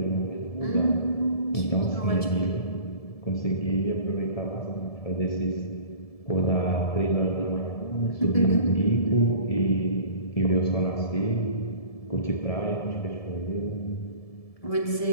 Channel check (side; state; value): right; late; 1.7 ms